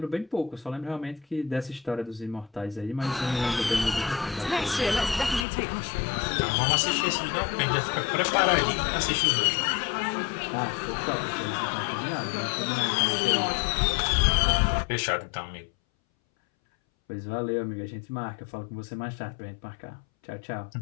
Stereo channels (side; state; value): right; drops out; at 5.5 s